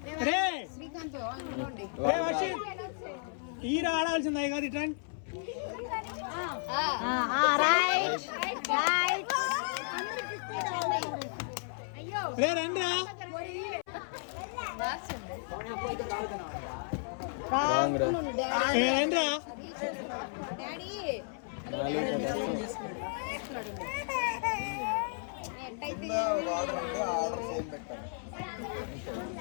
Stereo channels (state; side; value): silent; right; 56 dB below the other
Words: రే వర్షిత్, ఈర ఆడాల్సిందా కాదు. ఇట్లా రే రండిరా. రండిరా.